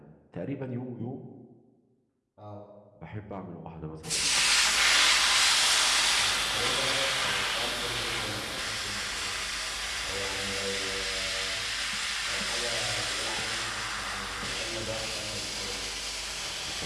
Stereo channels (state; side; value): identical; both; correlation 1.00